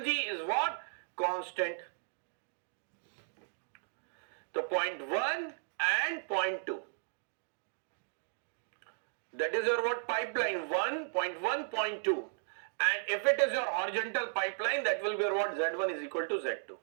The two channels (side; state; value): left; silent; digital silence